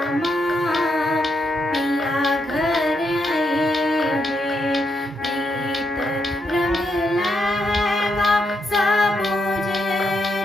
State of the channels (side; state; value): both; normal; correlation 0.80